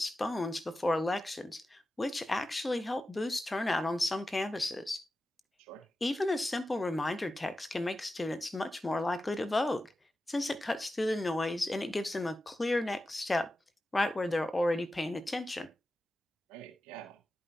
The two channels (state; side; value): normal; both; correlation 0.93